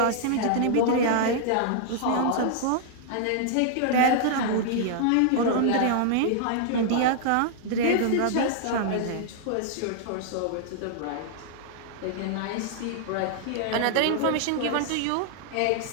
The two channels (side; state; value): both; different; correlation -0.01